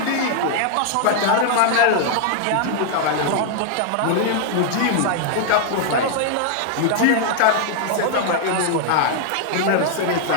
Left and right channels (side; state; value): both; different; correlation 0.00